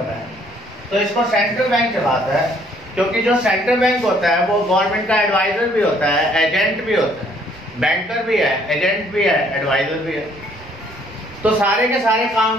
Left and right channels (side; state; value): both; normal; correlation 0.63